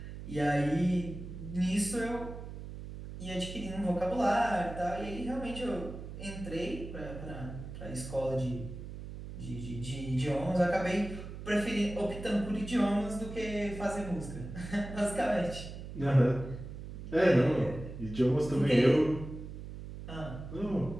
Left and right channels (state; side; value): noise; right; hum, 10 dB below the sound